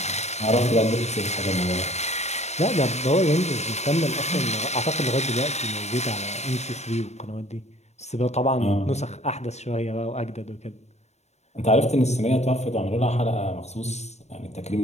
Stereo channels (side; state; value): right; late; 0.32 ms